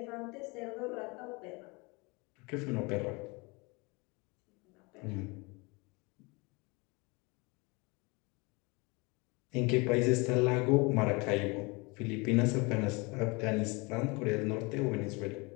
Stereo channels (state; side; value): quieter; right; 27.5 dB